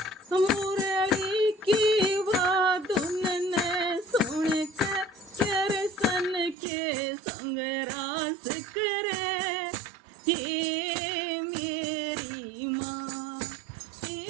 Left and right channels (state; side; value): drops out; left; at 6.6 s